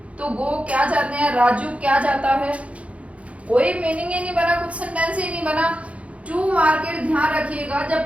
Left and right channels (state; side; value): late; left; 0.064 ms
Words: तो गो क्या जाते हैं, राजू क्या जाता है। कोई मीनिंग ही नहीं बना, कुछ सेंटेंस ही नहीं बना। टू मार्केट, ध्यान रखिएगा, जब